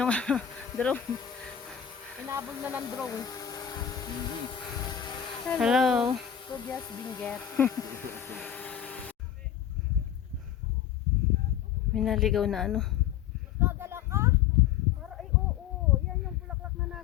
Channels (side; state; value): right; quieter; 9.6 dB